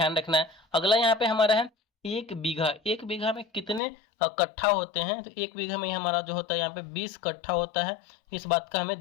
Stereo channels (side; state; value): right; drops out; at 3.8 s